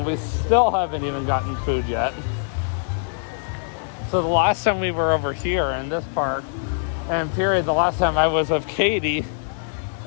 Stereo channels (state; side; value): silent; right; digital silence